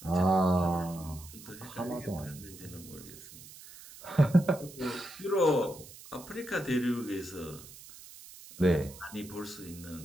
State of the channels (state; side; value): noise; right; hiss, 17 dB below the sound